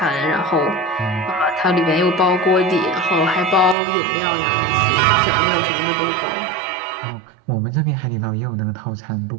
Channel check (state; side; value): drops out; left; at 3.8 s